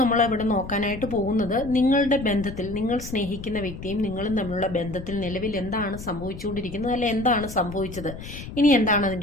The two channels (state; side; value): noise; left; rumble, 12 dB below the sound